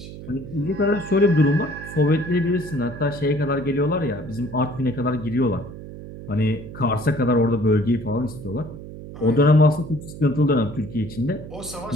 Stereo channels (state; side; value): noise; right; hum, 13 dB below the sound